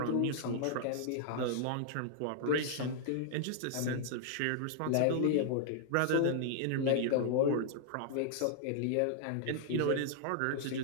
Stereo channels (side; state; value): both; different; correlation -0.01